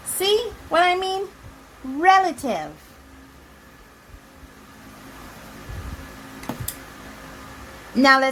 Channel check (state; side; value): identical; both; correlation 1.00